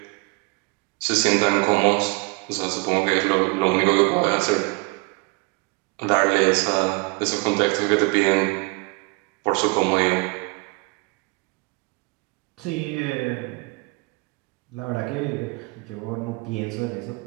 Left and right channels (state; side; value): quieter; left; 28.8 dB